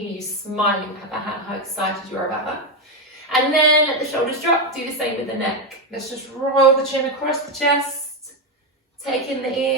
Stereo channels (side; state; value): both; normal; correlation 0.08